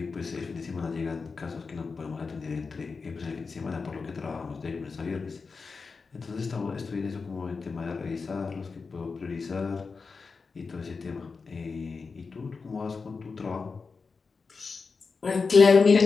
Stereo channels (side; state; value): right; quieter; 4.7 dB